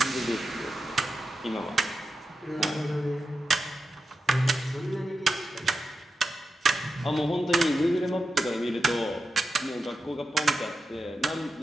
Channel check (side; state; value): both; normal; correlation 0.90